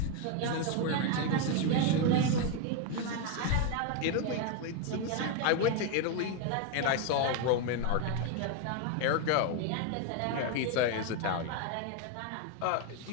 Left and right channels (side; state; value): both; different; correlation 0.01